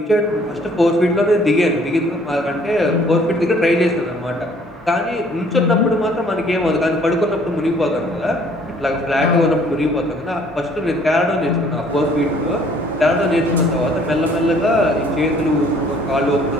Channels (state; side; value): normal; both; correlation 0.59